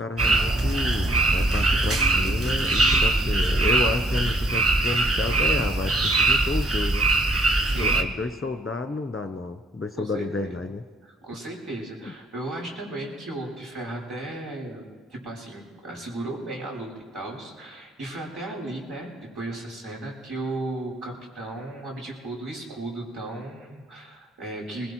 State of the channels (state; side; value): normal; both; correlation 0.65